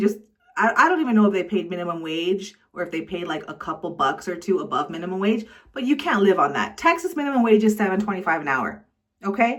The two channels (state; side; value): identical; both; correlation 1.00